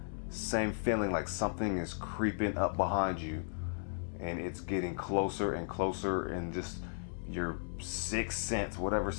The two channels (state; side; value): silent; right; digital silence